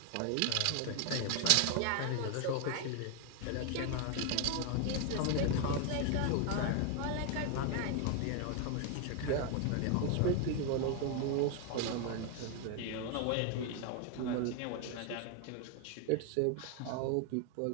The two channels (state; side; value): different; both; correlation 0.01